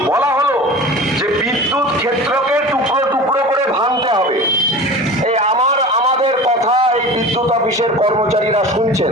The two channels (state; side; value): normal; both; correlation 0.35